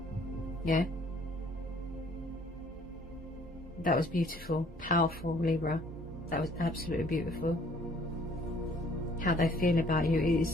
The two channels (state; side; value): normal; both; correlation 0.59